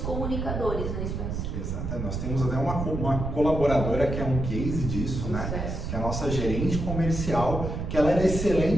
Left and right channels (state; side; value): noise; right; rumble, 4 dB below the sound